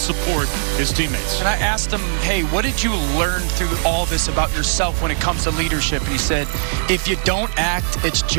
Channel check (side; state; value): left; silent; 56 dB below the other